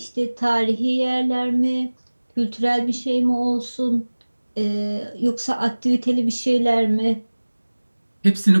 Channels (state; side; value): inverted; both; correlation -1.00